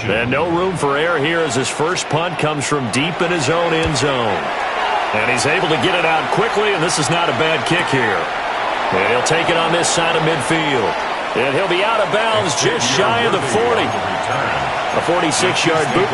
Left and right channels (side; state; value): both; identical; correlation 1.00